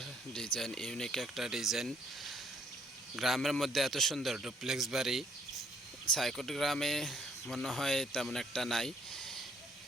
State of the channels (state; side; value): normal; both; correlation 0.66